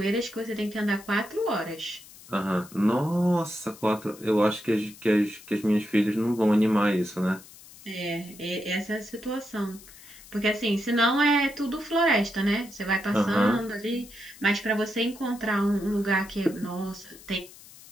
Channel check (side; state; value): left; noise; hiss, 20 dB below the sound